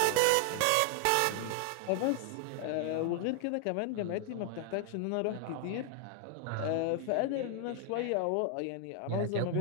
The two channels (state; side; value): different; both; correlation 0.00